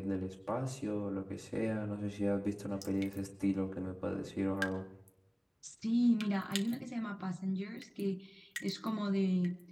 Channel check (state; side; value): identical; both; correlation 1.00